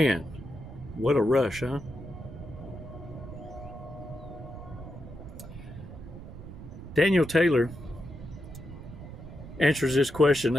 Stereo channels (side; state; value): right; noise; rumble, 13 dB below the sound